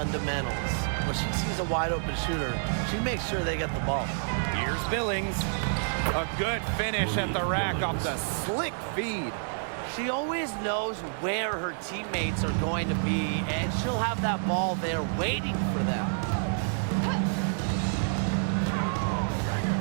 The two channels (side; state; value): left; silent; digital silence